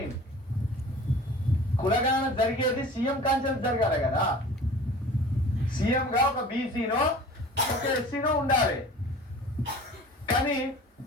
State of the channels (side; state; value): both; normal; correlation 0.43